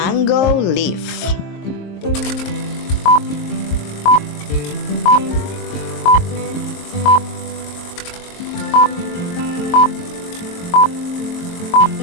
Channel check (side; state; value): right; late; 22 ms